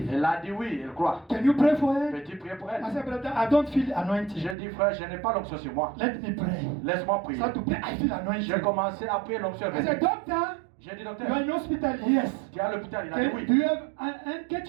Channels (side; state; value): left; drops out; at 4.5 s